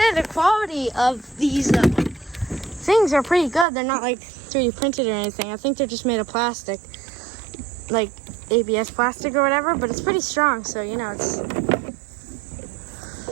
the quality of these things are pretty good. They're not like 3D printed or anything. I think they're just made of plastic, like ABS plastic or whatever. But it's pretty strong, so you know it's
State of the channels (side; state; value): left; drops out; at 3.7 s